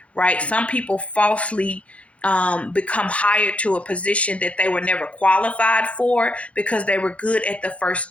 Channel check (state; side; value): late; right; 0.063 ms